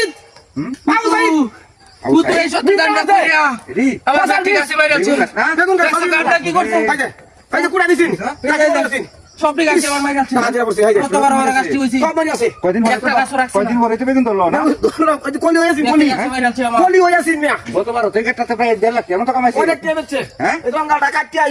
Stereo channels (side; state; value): both; identical; correlation 1.00